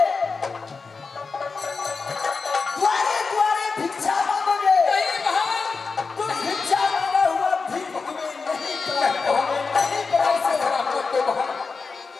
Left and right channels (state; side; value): quieter; right; 4.6 dB